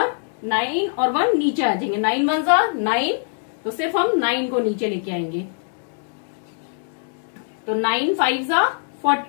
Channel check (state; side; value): silent; right; digital silence